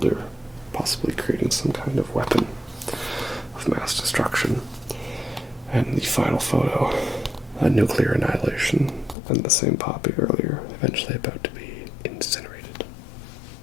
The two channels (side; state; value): right; drops out; at 9.2 s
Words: possibly creating some kind of weapon of mass destruction. And the final photo, a nuclear annihilation, and the same poppy earlier, eventually about to be incinerated.